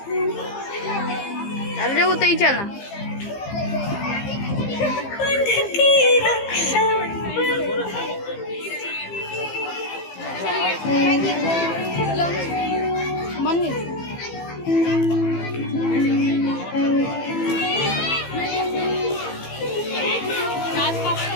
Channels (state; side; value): late; right; 15 ms